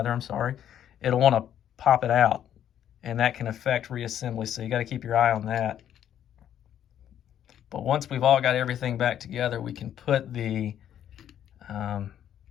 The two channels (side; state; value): right; quieter; 10.3 dB